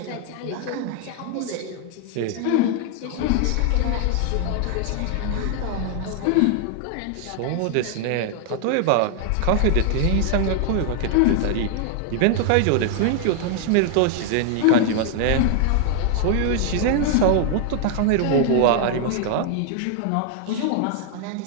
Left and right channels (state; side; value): different; both; correlation 0.00